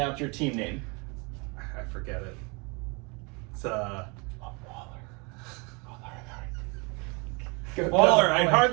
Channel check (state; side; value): quieter; left; 30.4 dB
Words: your team name? I forget it. It's Waller. Waller, I